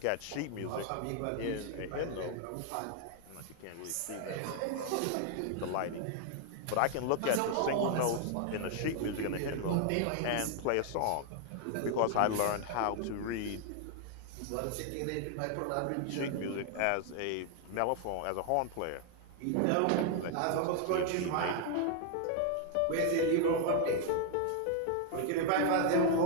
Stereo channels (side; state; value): both; different; correlation 0.00